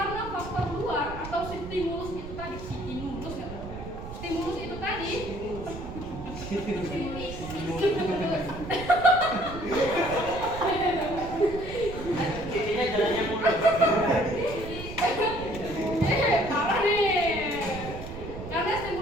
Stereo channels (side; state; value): right; noise; rumble, 10 dB below the sound